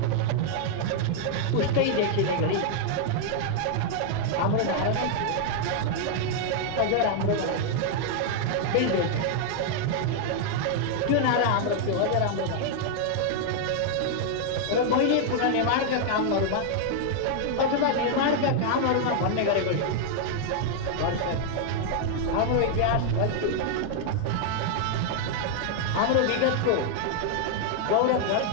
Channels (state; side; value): different; both; correlation 0.00